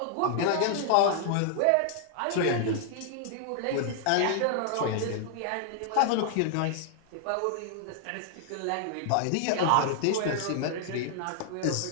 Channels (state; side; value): different; both; correlation -0.01